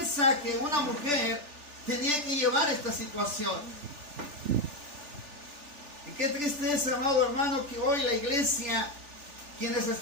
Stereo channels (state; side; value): late; left; 3.4 ms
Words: que una mujer tenía que llevar esta situación. Y qué tristeza, amado hermano, que hoy la iglesia, quienes